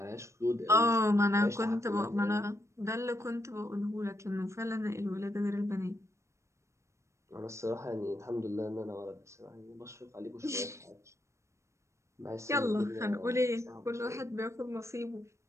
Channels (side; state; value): left; late; 0.14 ms